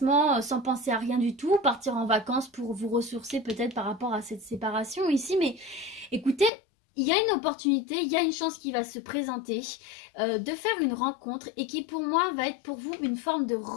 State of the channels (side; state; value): right; drops out; at 6.5 s